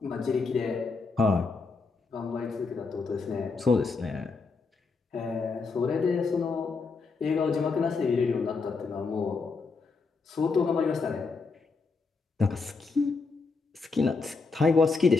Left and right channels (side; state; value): right; quieter; 4.4 dB